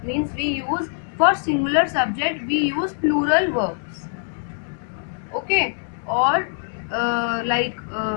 means we use, for singular subject we use plural verbs. Okay, or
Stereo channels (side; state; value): right; silent; digital silence